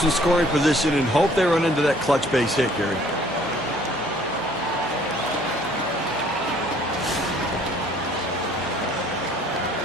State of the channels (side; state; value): both; normal; correlation 0.58